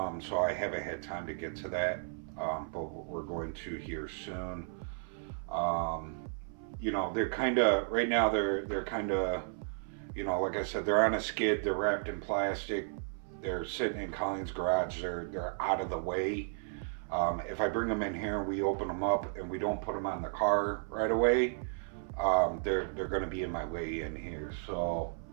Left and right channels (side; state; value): left; silent; 55 dB below the other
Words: so I haven't had time to get to that. But we're going to here soon. You know, they're kind of right now. They're kind of, you know, like I said, they're on a skid. They're wrapped in plastic. They're sitting in Colleen's garage. They're out of the way. If I bring them in here and we open them up and we don't put them on the car right away, they're going to be in my way in here. So